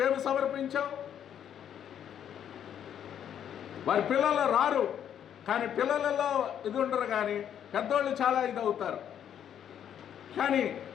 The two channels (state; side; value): quieter; right; 9.4 dB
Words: సమర్పించావు? వారి పిల్లలు రారు, కానీ పిల్లలలో ఇది ఉండరు, కానీ పెద్దోళ్ళు చాలా ఇది అవుతారు. కానీ